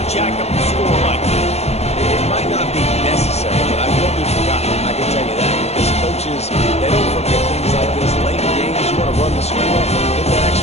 jack up the score like this. It might not be necessary, but I will be forgotten. I can tell you that. Because coaches, they don't forget things like this. Late in games, you want to run the score, get that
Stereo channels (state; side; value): late; right; 0.31 ms